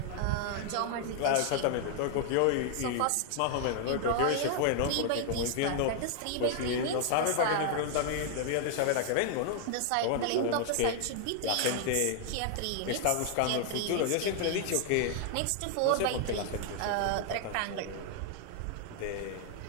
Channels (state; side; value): different; both; correlation 0.00